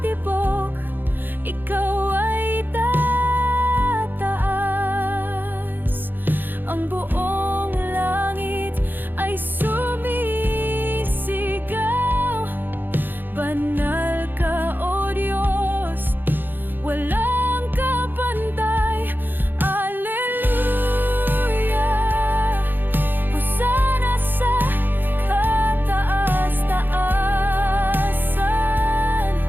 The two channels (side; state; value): left; late; 0.092 ms